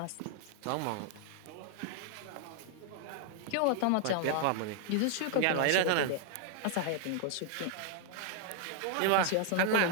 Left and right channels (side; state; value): both; different; correlation 0.00